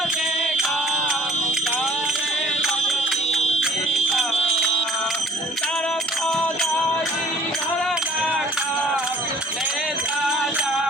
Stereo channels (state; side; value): normal; both; correlation 0.54